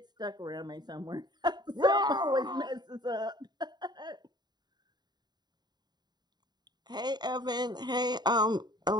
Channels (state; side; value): late; left; 0.20 ms